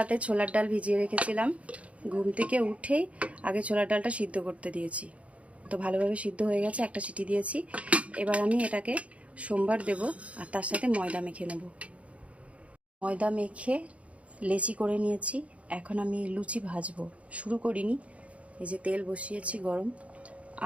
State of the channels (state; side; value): late; left; 0.064 ms